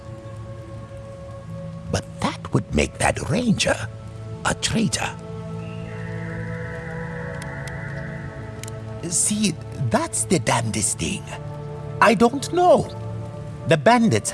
But that would make that Ranger a traitor. See, that's the damnedest thing. I don't know. The bandits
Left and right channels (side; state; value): both; identical; correlation 1.00